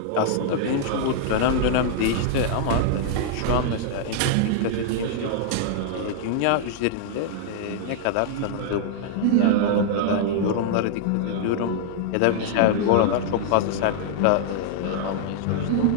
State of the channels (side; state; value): both; different; correlation -0.01